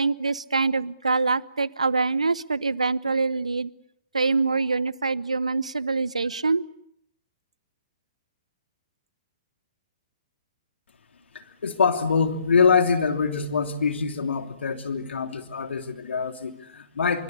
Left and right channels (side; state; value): both; inverted; correlation -0.73